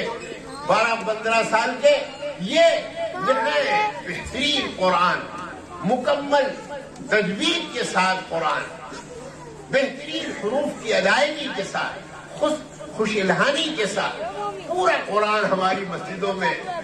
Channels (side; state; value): both; identical; correlation 1.00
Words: 12-15 سال کے یہ بہترین قرآن، مکمل تجوید کے ساتھ قرآن، بہترین حروف کی ادائیگی کے ساتھ، خوش الہانی کے ساتھ پورا قرآن ہماری مسجدوں میں